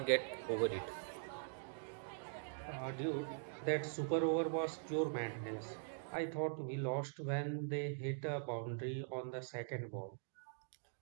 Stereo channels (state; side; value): silent; left; digital silence